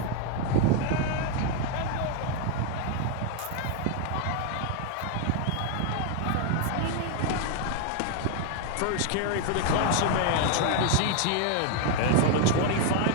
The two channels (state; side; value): different; both; correlation 0.01